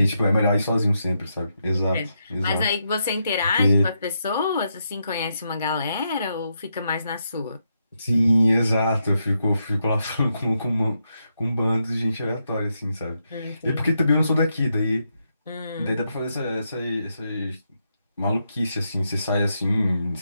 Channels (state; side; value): inverted; both; correlation -0.82